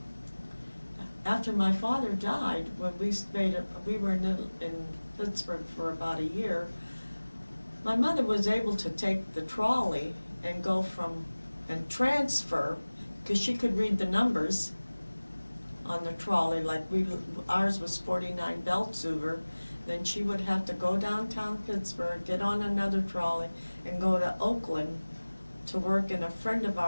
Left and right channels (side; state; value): both; inverted; correlation -1.00